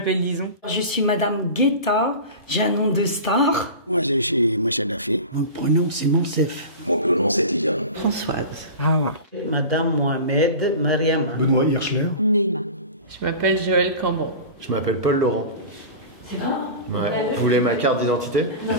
Lison. Je suis Madame Guetta, j'ai un nom de star. Moi, je suis Moussa Dafé. Mon prénom, c'est Monsef. Mon prénom, c'est Tidiane. Françoise. Hawa. Madame Mohamed Mariama. Benoît Hirschler. Neima. Je m'appelle Joël Cambon. Je m'appelle Paul Laurent. C'est vrai? Ouais. Vous voulez ma carte d'identité?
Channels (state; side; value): inverted; both; correlation -0.32